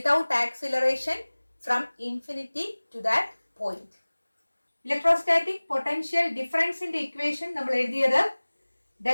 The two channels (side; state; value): both; inverted; correlation -1.00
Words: acceleration from infinity to that point. Electrostatic potential difference in the equation നമ്മൾ എഴുതിയത്